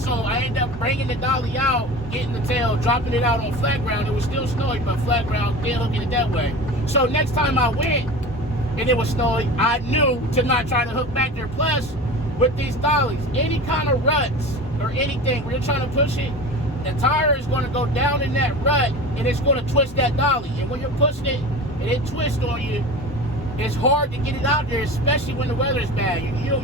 I ended up bringing the dolly out, getting the tail, dropping it out on flat ground. It was still snowy, but flat ground, then hooking it that way. So next time I went and it was snowy, I knew to not try to hook back there. Plus, with these dollies, any kind of ruts or anything where you're trying to push it, the tire is going to go down in that rut and it's going to twist that dolly. And when you're pushing it and it twists on you, it's hard to get it out there, especially when the weather's bad. You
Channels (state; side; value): normal; both; correlation 0.33